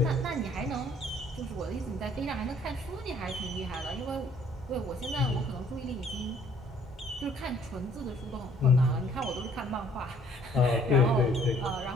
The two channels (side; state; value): both; normal; correlation 0.60